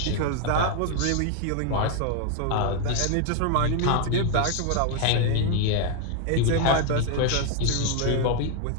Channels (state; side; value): different; both; correlation 0.01